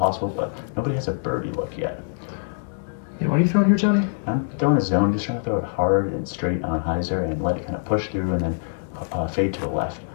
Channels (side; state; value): right; silent; 63 dB below the other